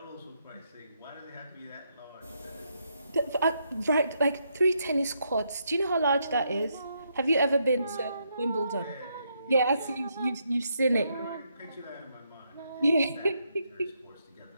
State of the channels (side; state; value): both; inverted; correlation -0.77